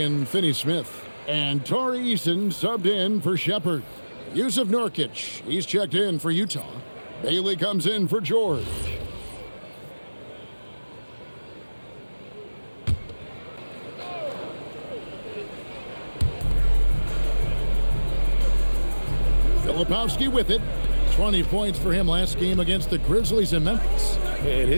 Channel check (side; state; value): both; inverted; correlation -1.00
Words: Finney-Smith. And Tari Eason subbed in for Shepherd. Yusuf Nurkic, he's checked in for Utah. Bailey comes in for George. Filipowski with it. 20 points for him last game against the Grizzlies in Memphis. And